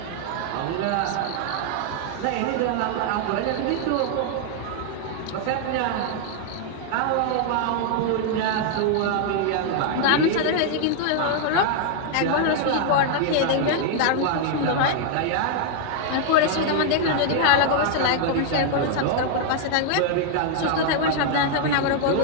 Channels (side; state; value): both; different; correlation 0.00